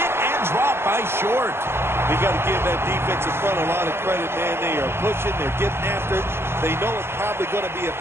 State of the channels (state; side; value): late; left; 0.12 ms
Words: and dropped by Short. We got to give that defensive front a lot of credit, man. They are pushing, they're getting after it. They know it's probably going to be a